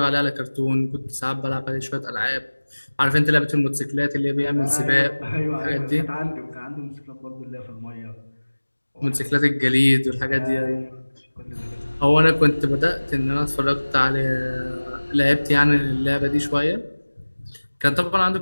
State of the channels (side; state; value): both; inverted; correlation -1.00